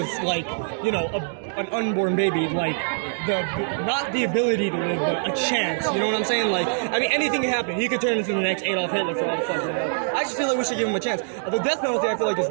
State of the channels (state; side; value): silent; left; digital silence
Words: like, an unborn baby, like, not the ability to live, but a chance. You know what I'm saying? Like, I mean, anything can happen. He could turn into the next Adolf Hitler for all the fuck. I just feel like we should give him a chance. The death penalty, I feel like, is